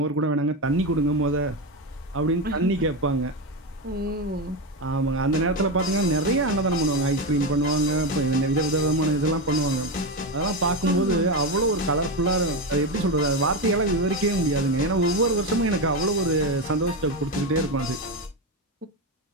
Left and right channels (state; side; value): normal; both; correlation 0.14